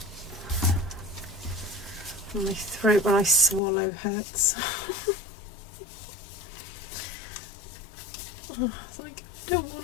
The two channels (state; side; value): drops out; right; at 3.6 s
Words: throat when I swallow hurts. Oh, it's like, I don't